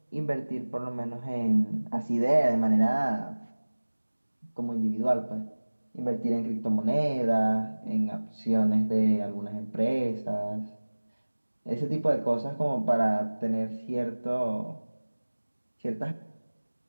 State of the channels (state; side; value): inverted; both; correlation -1.00